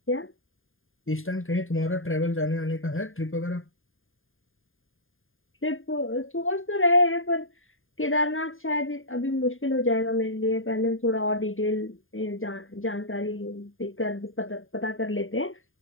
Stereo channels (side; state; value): right; late; 0.59 ms